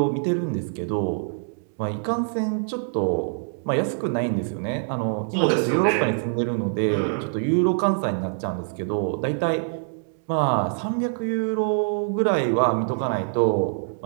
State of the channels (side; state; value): left; silent; digital silence